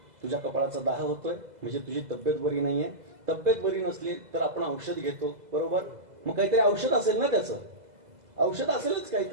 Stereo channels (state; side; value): late; left; 2.0 ms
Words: तुझ्या कपाळाचा दाह होतोय म्हणजे तुझी तब्येत बरी नाहीये. तब्येत बरी नसली तर आपण औषध घेतो बरोबर, मग काहीतरी औषध असेल ना त्याचं. औषध असेलच